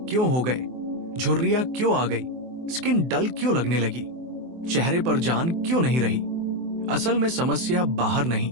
क्यों हो गए, झुर्रियां क्यों आ गई, स्किन डल क्यों लगने लगी, चेहरे पर जान क्यों नहीं रही। असल में समस्या बाहर नहीं,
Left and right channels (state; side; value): late; left; 24 ms